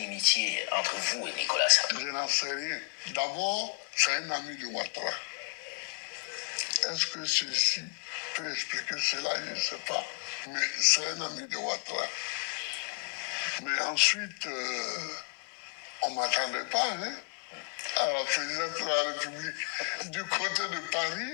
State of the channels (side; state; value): right; quieter; 39.4 dB